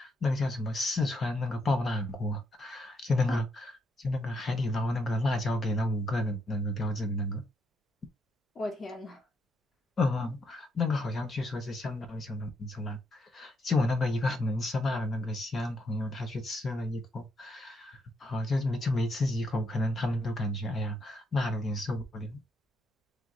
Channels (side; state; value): both; normal; correlation 0.77